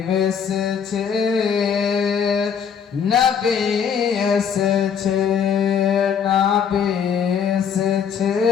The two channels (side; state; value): right; quieter; 7.3 dB